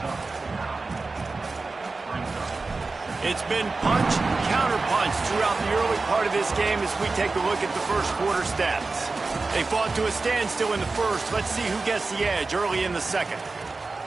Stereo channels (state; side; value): quieter; left; 3.8 dB